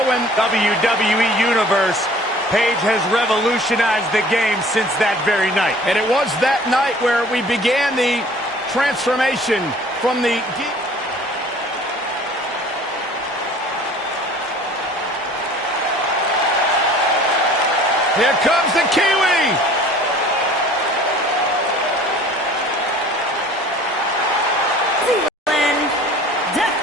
when WWE Universe, Paige has revolutionized the game since that very night. And it was that night where we began the transformation from the... Here comes the Kiwi!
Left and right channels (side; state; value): both; normal; correlation 0.49